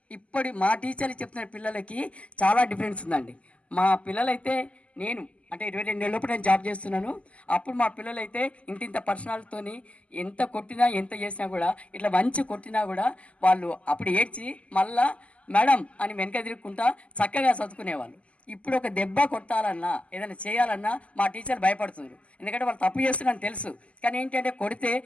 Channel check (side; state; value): right; late; 0.063 ms